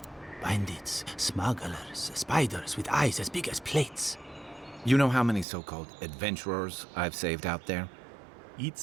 Bandits, smugglers, spiders with eyes as big as plates. You know how many so-called adventurers I've saved out there?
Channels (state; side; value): drops out; left; at 5.5 s